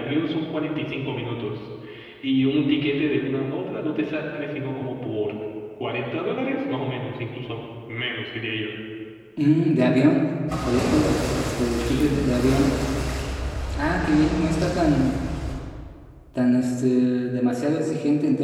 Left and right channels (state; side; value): identical; both; correlation 1.00